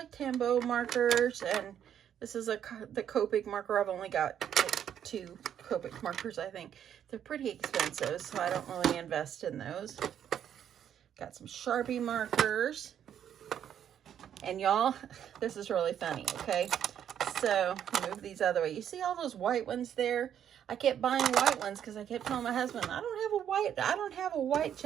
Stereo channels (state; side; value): quieter; left; 9.5 dB